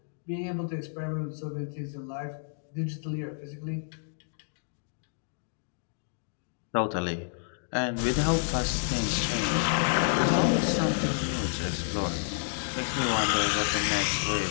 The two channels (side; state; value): right; silent; digital silence